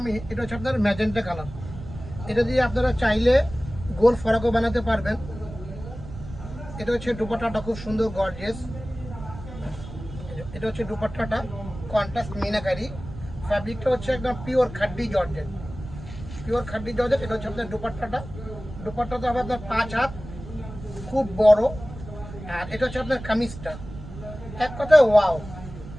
আমি, এটা হচ্ছে আপনার ম্যাজেন্টা কালার। এটা দিয়ে আপনারা চাইলে গোল ফরাকও বানাতে পারবেন। এটা হচ্ছে দুপাট্টাটা খুব সুন্দর গর্জিয়াস। এটা হচ্ছে দুপাট্টাটা কন্ট্রাস্ট মিনাকারি। ফ্যাব্রিকটা হচ্ছে একদম পিওর খাড্ডি জর্জেট। এটা হচ্ছে আপনার দুপাট্টাটা হবে আপনার 5 হাত, খুব বড়। আর এটা হচ্ছে আপনার কামিজটা, এক কথায় ওয়াও।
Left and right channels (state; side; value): noise; right; rumble, 13 dB below the sound